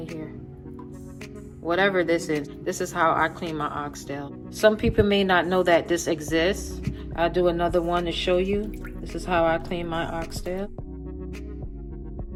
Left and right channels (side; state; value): both; identical; correlation 1.00